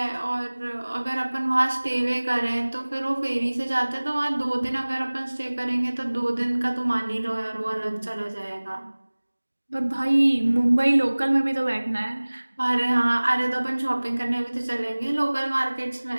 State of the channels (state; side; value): inverted; both; correlation -1.00